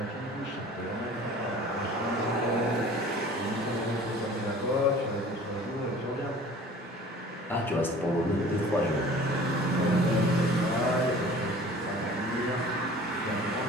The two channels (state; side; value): normal; both; correlation 0.46